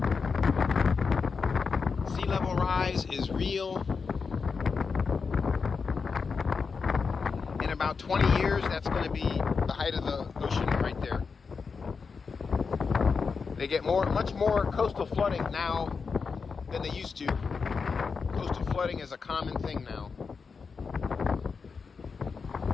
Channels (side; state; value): right; quieter; 5.2 dB